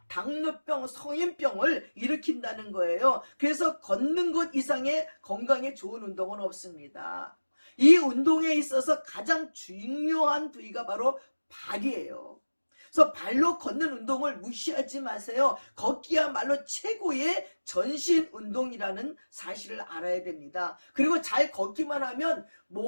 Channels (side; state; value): both; inverted; correlation -1.00